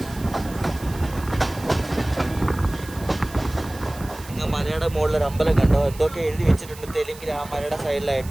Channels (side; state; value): right; noise; hiss, 18 dB below the sound